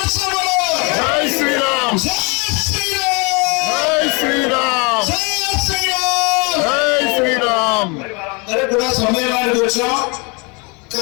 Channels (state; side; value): quieter; right; 30.5 dB